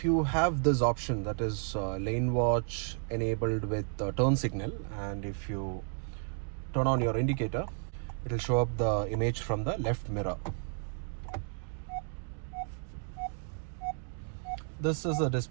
you have this option, that is lane watch enabled with turn signal, and if you turn on your indicator, it will show up the image from the left mirror. This is a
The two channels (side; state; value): left; silent; 56 dB below the other